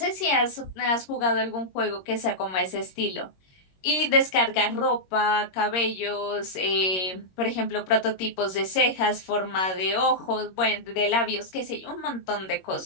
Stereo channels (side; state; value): right; late; 21 ms